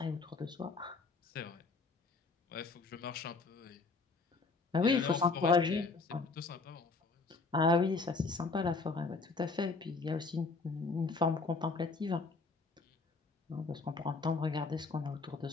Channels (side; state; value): right; quieter; 4.0 dB